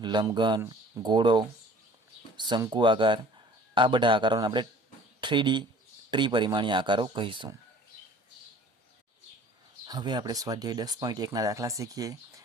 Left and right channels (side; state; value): both; normal; correlation 0.49